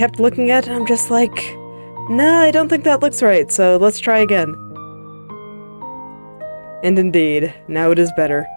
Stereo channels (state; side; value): inverted; both; correlation -1.00